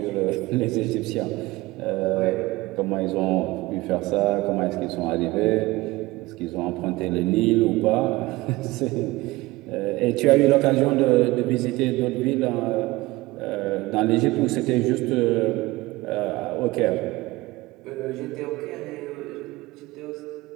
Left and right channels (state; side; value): quieter; left; 20.2 dB